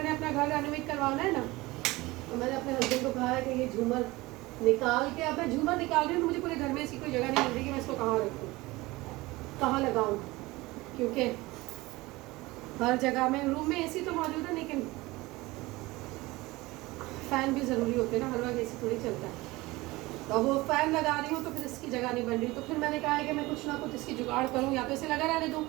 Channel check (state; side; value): quieter; left; 20.8 dB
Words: अपना घर रेनोवेट करवाना है ना, तो मैंने अपने हस्बैंड को कहा है कि ये झूमर निकाल के, अब मैं झूमर निकाल रही हूँ, मुझे पूरे घर में ऐसी कोई जगह नहीं मिल रही कि मैं इसको कहाँ रखूँ, कहाँ लगाऊँ, क्योंकि हर जगह में, रूम में एसी तो मौजूद है लेकिन फ़ैन भी ज़रूरी होते हैं ना, हर वक्त एसी थोड़ी चलता है। तो वो फ़ैन लगा रही हूँ तो फिर इसकी जगह नहीं बन रही, तो फिर मैंने कहा है कि मैं कुछ ना कुछ इसकी जुगाड़ करूँ, या तो इसे लगा रहने दूँ,